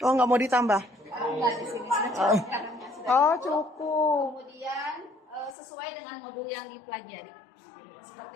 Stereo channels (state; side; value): drops out; right; at 5.6 s